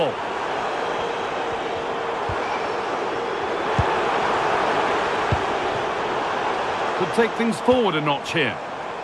Could take things forward a notch here.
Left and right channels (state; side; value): identical; both; correlation 1.00